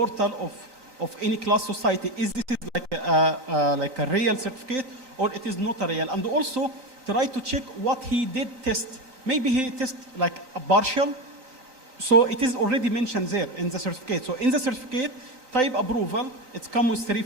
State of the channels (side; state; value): left; late; 3.9 ms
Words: of any class society, is this like a real certificate or it is not a real? And also try to check what he did test. Maybe he test like a partial, so it is already mentioned there in the certificate. So in the certificate, type approval, it comes with